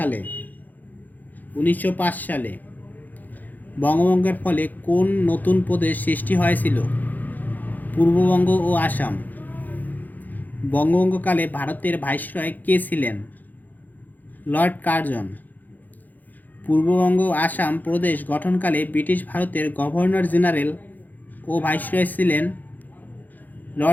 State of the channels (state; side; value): late; right; 0.083 ms